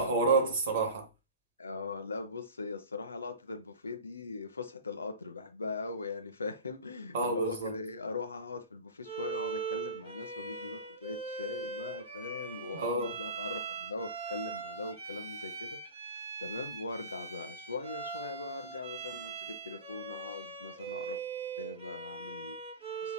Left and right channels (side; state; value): both; inverted; correlation -0.36